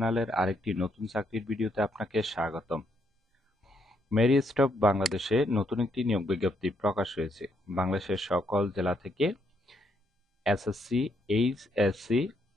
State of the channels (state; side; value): normal; both; correlation 0.75